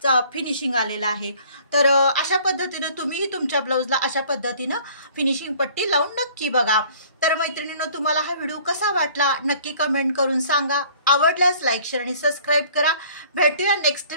फिनिशिंग आलेला आहे। तर अशा पद्धतीने तुम्हीही तुमच्या ब्लाउजला अशा पद्धतीने फिनिशिंग पट्टी लावून नक्की बघा। तर मैत्रिणींनो तुम्हाला हा व्हिडिओ कसा वाटला नक्की कमेंट करून सांगा, आवडल्यास लाईक शेअर आणि सबस्क्राइब करा। भेटूया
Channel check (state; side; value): inverted; both; correlation -0.54